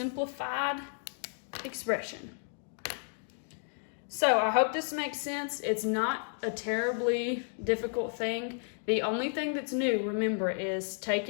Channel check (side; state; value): right; silent; 56 dB below the other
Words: expression. So I hope this makes sense. It's not a terribly difficult thing. The only thing that's new, remember, is